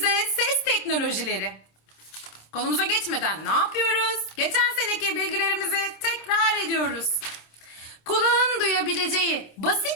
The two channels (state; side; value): late; right; 26 ms